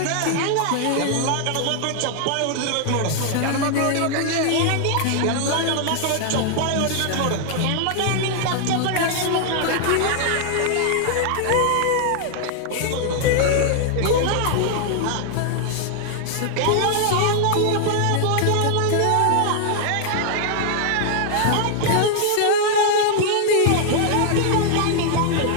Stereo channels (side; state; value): both; different; correlation 0.00